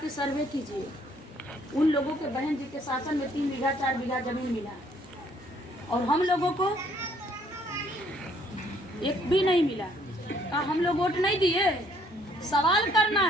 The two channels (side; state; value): both; normal; correlation 0.64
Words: सर्वे कीजिए, उन लोगों के बहन जी के शासन में 3 बीघा 4 बीघा जमीन मिला, और हम लोगों को एक भी नहीं मिला। हम लोग वोट नहीं दिए, सवाल करना